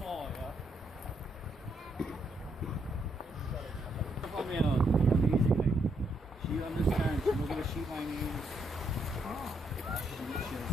yeah? Amazing, like, she understands, she knows what a sheet line means.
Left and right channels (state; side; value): normal; both; correlation 0.76